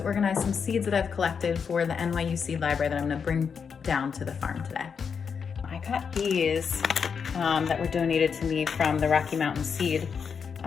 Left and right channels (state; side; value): quieter; right; 6.3 dB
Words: organize some seeds that I've collected for the NYU Seed Library that I'm gonna bring down to the farm today. I got these that were donated to me from the Rocky Mountain Seed